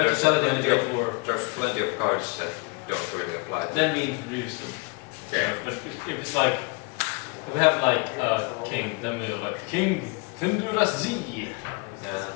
to sell it in the Great War. there's plenty of cards that don't really apply. Then we introduce them. Yeah. But if it's like, if we have like a king, then we have like King Tendurazi. Yeah.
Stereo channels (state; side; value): quieter; right; 30.6 dB